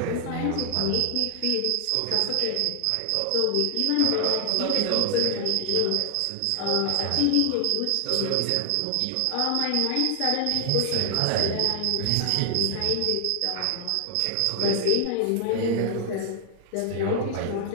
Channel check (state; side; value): different; both; correlation 0.00